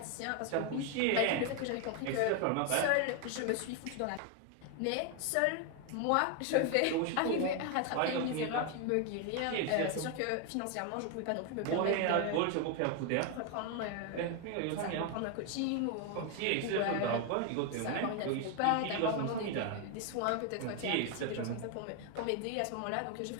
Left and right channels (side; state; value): both; different; correlation 0.01